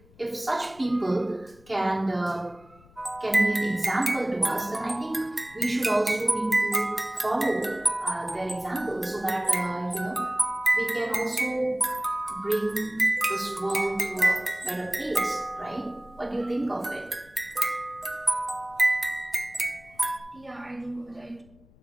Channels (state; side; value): noise; left; rumble, 26 dB below the sound